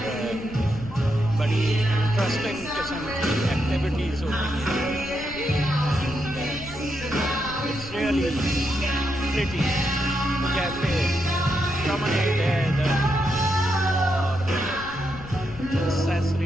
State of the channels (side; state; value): left; noise; rumble, 14 dB below the sound